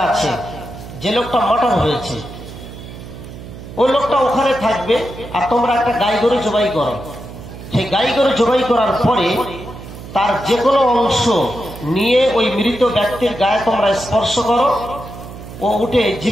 আছে, যে লোকটা মার্ডার হয়েছে, ওই লোকটা ওখানে থাকবে, আর তোমরা একটা গাই গরু জবাই করো। সেই গাই গরু জবাই করার পরে তার যে কোনো অংশ নিয়ে ওই মৃত ব্যক্তির গায়ে তোমরা স্পর্শ করো, ও উঠে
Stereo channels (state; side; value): noise; right; hum, 14 dB below the sound